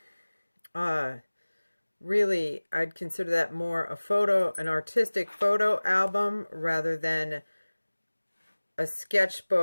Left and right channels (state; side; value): inverted; both; correlation -1.00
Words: really, I'd consider that more an artistic photo album rather than a